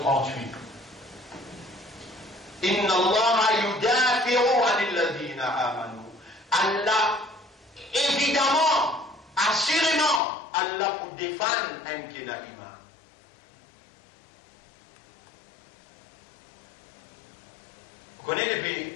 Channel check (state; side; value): drops out; right; at 10.2 s